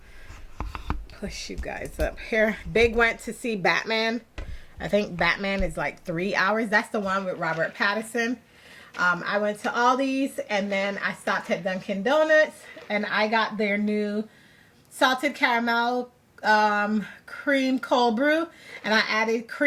push you guys up here. Big went to see Batman. I think Batman is like 3 hours. That's the one with Robert Pattinson. I went to Aldi's, and then I stopped at Dunkin' Donuts, and I got their new salted caramel cream cold brew, and I added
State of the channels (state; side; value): identical; both; correlation 1.00